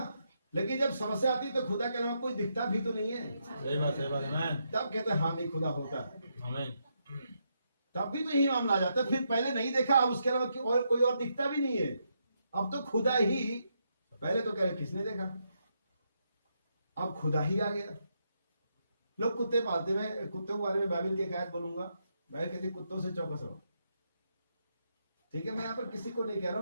लेकिन जब समस्या आती है तो खुदा के अलावा कोई दिखता भी तो नहीं है। सही बात है मैं, तब कहते हैं हाँ नहीं खुदा होता है, आमीन। तब भी तो यही मामला आ जाता है। फिर पहले नहीं देखा, अब उसके अलावा और कोई और दिखता भी नहीं है, अब तो खुदा ही। पहले तो कह रहे किसने देखा, अब खुदा ही आ गया। लोग कुत्ते पालते, मैं कुत्तों के बारे में बाइबल की एक आयत बोलूंगा। बाइबल कहती कुत्तों से चौकस रहो। ठीक है, मैं यहाँ पर किसी को नहीं कह रहा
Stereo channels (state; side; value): inverted; both; correlation -0.80